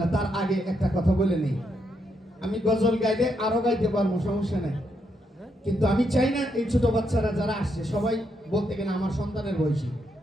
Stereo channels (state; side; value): normal; both; correlation 0.78